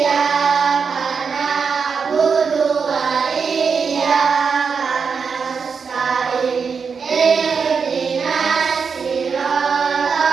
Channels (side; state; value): left; quieter; 5.7 dB